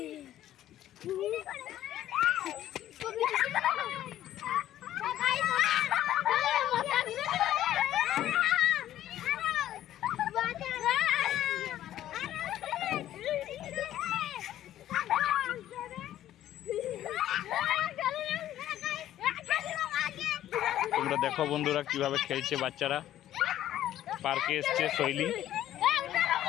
তোমরা দেখো বন্ধুরা কিভাবে খেলছে বাচ্চারা। পার্কে এসছে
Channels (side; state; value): right; quieter; 12.6 dB